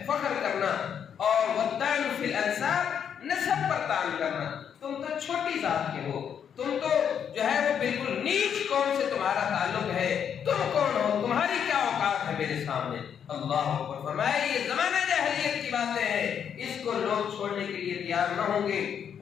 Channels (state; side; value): quieter; right; 8.1 dB